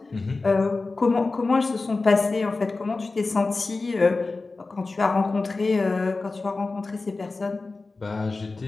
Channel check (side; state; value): right; quieter; 3.7 dB